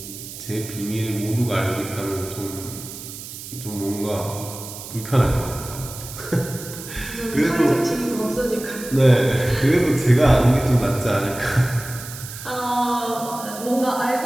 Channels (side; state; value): right; noise; hiss, 12 dB below the sound